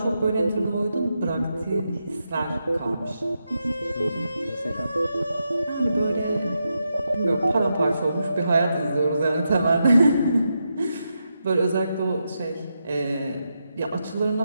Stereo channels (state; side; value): inverted; both; correlation -0.85